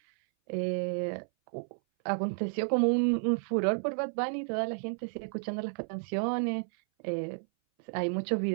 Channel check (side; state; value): left; silent; 57 dB below the other